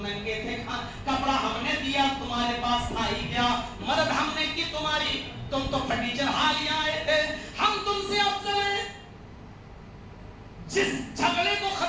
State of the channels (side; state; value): both; identical; correlation 1.00